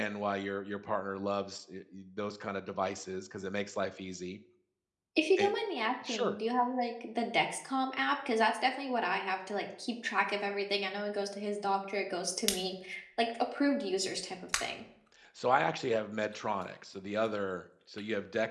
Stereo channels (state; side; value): identical; both; correlation 1.00